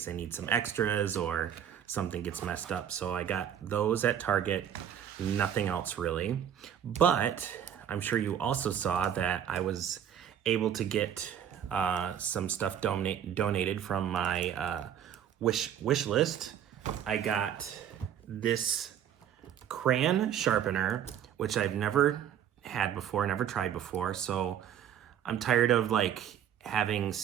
I need some extras or something gets messed up. So I got those at Target, nothing else really. But I'm sure you also saw that I was able to get some stuff donated from my wish list. I got this crayon sharpener, which I've never had before, never tried before. So I'm tired of like having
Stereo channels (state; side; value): quieter; left; 9.5 dB